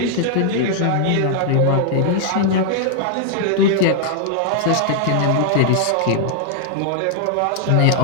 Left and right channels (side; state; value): both; different; correlation -0.01